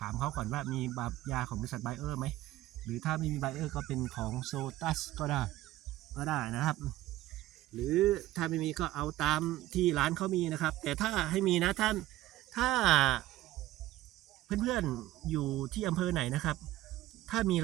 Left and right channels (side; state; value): left; quieter; 16.0 dB